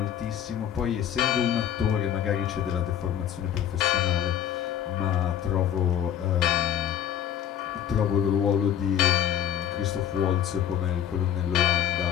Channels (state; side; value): quieter; right; 10.0 dB